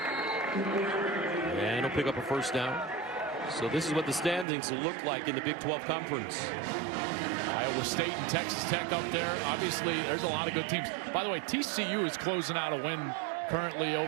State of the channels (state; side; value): drops out; left; at 4.5 s